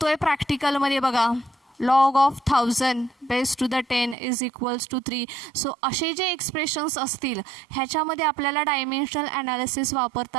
प्रॅक्टिकलमध्ये बघा, log of 1000 base to the 10 is equals to 3. So असे जे एक्सप्रेशन्स असतील ह्याच्यामध्ये आपल्याला डायमेन्शनल ॲनालिसिस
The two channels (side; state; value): left; drops out; at 4.2 s